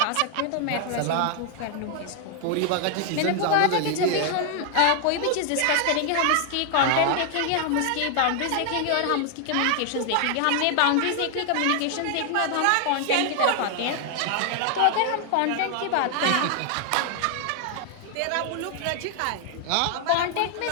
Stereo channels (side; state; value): both; different; correlation 0.00